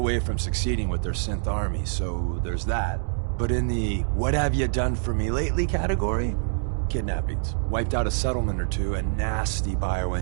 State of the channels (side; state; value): left; silent; digital silence